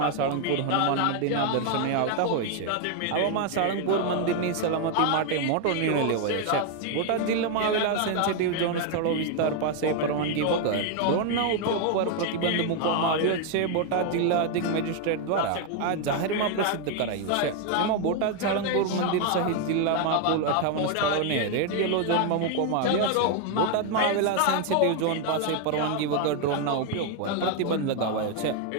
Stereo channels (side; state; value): both; different; correlation 0.01